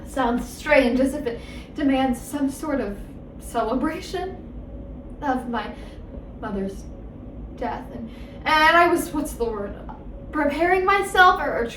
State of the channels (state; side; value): identical; both; correlation 1.00